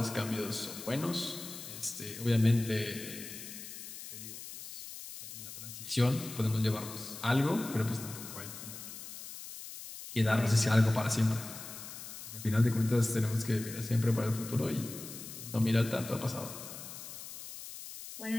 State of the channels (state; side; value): noise; left; hiss, 11 dB below the sound